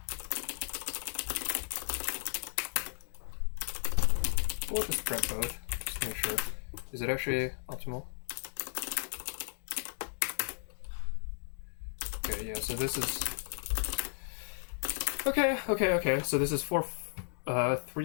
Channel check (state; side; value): silent; right; digital silence